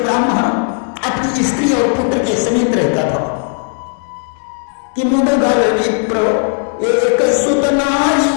ब्राह्मण अपनी स्त्री और पुत्र के समीप रहता था कि मुद्गल विप्र एक सुत नारी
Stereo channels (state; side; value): silent; right; 55 dB below the other